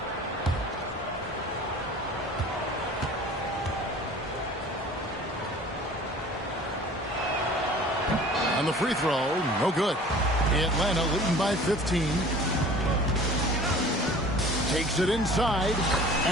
On the free throw, no good. Atlanta leading by 15. Takes it inside,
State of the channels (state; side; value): normal; both; correlation 0.45